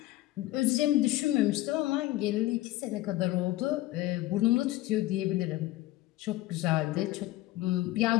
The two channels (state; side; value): quieter; right; 16.6 dB